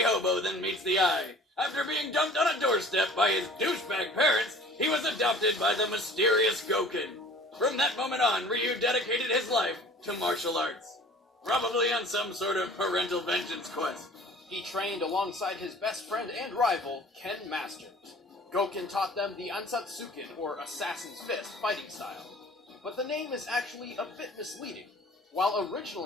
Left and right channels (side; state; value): both; normal; correlation 0.47